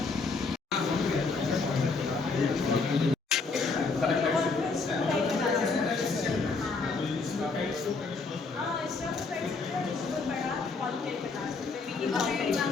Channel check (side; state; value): right; quieter; 4.2 dB